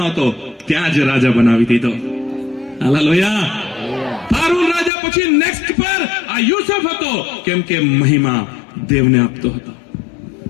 હતો ત્યાં જ રાજા બનાવી દીધો. હાલેલુયા. ફારૂન રાજા પછી નેક્સ્ટ પર આ યુસુફ હતો, કેમ કે મહિમા દેવને આપતો હતો.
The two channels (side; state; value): right; drops out; at 4.9 s